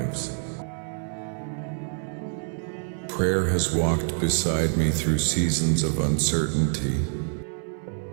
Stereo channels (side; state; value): left; silent; 61 dB below the other